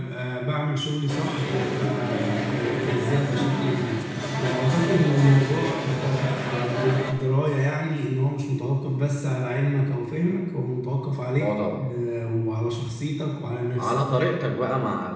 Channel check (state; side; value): identical; both; correlation 1.00